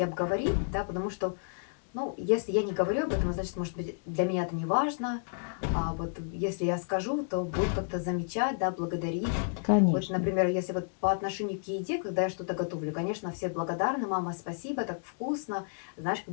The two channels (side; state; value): right; silent; digital silence